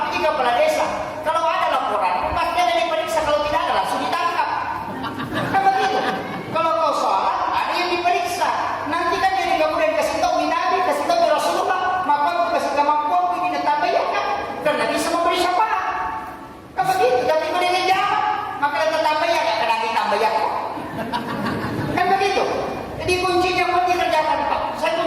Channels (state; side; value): identical; both; correlation 1.00